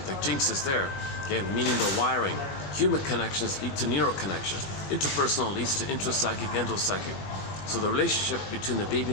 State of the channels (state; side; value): late; right; 20 ms